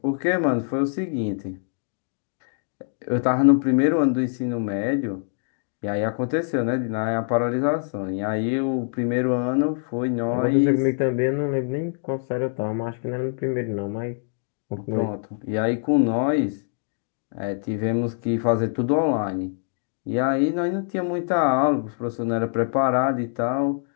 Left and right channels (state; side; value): silent; right; digital silence